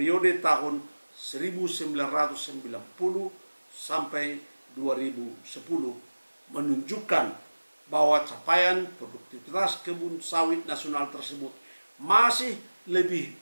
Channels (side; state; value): both; inverted; correlation -1.00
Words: tahun 1990 sampai 2010 menunjukkan bahwa capaian produktivitas kebun sawit nasional tersebut masih lebih